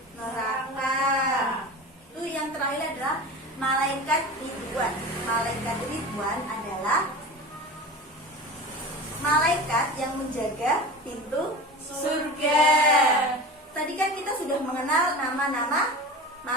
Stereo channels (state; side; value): normal; both; correlation 0.31